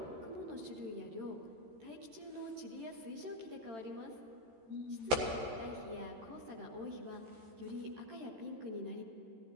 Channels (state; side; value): late; left; 13 ms